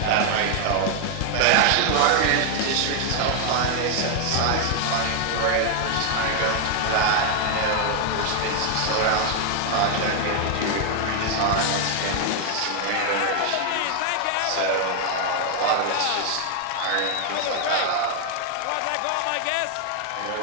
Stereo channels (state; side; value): different; both; correlation 0.00